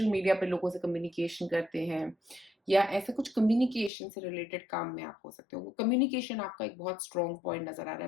मीडिया पे लोगों से कम्युनिकेशन करते हैं, या ऐसे कुछ कम्युनिकेशन से रिलेटेड काम में आप हो सकते हो। कम्युनिकेशन आपका एक बहुत स्ट्रॉन्ग पॉइंट नजर आ रहा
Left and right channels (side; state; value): right; drops out; at 3.9 s